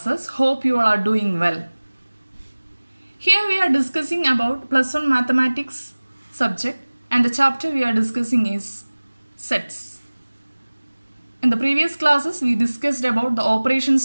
Hope you all are doing well. Here we are discussing about plus 1 mathematics subject and the chapter we are discussing is sets. In the previous classes we discussed about the operations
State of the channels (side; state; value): both; inverted; correlation -1.00